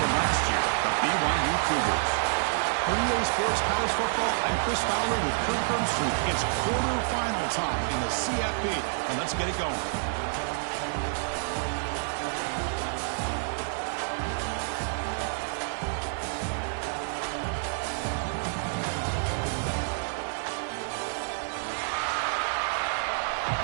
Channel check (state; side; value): silent; left; digital silence